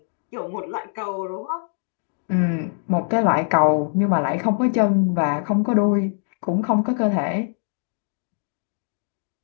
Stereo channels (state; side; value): silent; right; digital silence